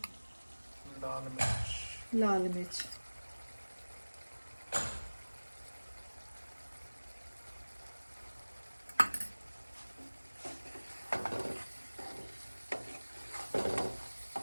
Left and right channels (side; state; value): both; inverted; correlation -1.00